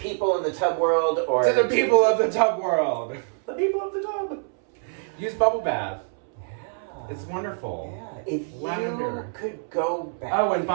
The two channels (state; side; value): silent; left; 62 dB below the other